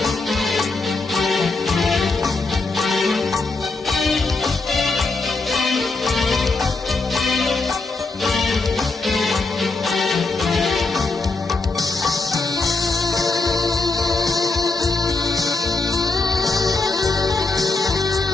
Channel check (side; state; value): right; quieter; 3.6 dB